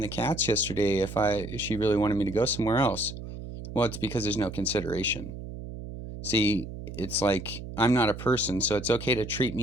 cats yesterday if she really wanted me to go somewhere else? Well, it's because there's no consideration. See, it's like I'm not a person, so it's okay to treat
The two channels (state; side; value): noise; right; hum, 10 dB below the sound